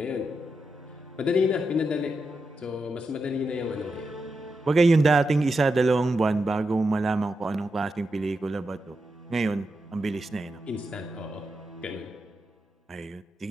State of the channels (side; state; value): both; normal; correlation 0.87